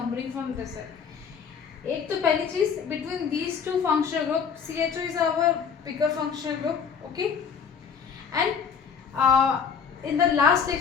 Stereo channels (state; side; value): quieter; right; 6.6 dB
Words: from this side. एक तो पहली चीज, between these two functional group, CHO is our bigger functional group. Okay, and in the last